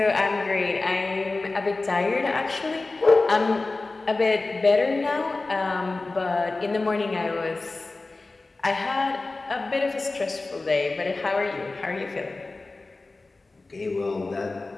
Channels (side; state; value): right; quieter; 3.4 dB